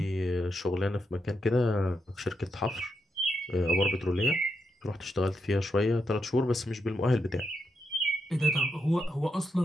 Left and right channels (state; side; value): normal; both; correlation 0.83